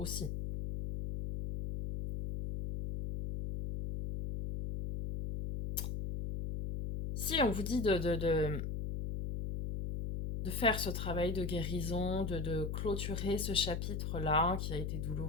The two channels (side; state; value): left; noise; hum, 3 dB below the sound